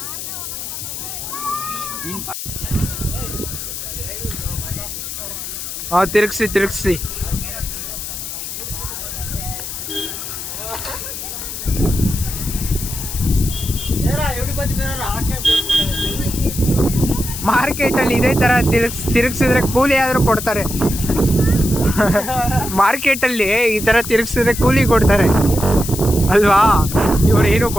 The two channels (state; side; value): noise; left; hiss, 7 dB below the sound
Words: ತಿರುಗಿಸಿ. ಮಾರ್ಕೆಟಲ್ಲಿ ಇದೇ ಥರ ತಿರುಗಿಸಿದ್ರೆ ಕೂಲಿ ಆದರೂ ಕೊಡ್ತಾರೆ. ಮಾರ್ಕೆಟಲ್ಲಿ ಈ ಥರ ತಿರುಗಿಸಿದ್ರೆ ಕೂಲಿ ಕೊಡ್ತಾರೆ ಅಲ್ವಾ. ಇವ್ರು ಏನೂ